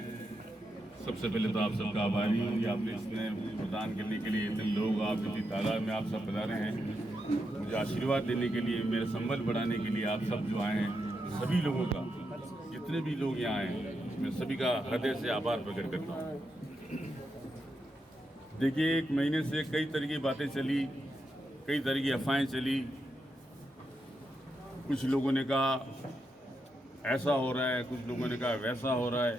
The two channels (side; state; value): both; normal; correlation 0.84